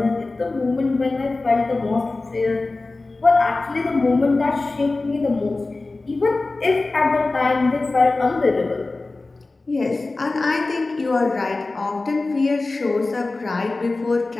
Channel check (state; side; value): quieter; right; 3.3 dB